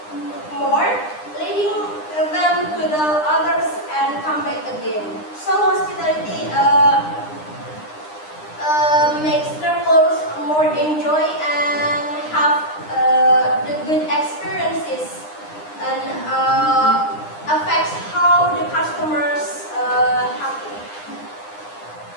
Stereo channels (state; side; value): late; right; 9.8 ms